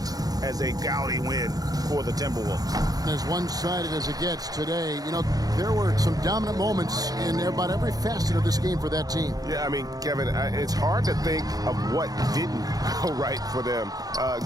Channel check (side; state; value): left; late; 0.18 ms